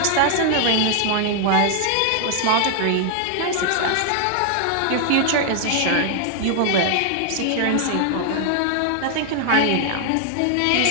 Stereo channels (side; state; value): both; different; correlation 0.00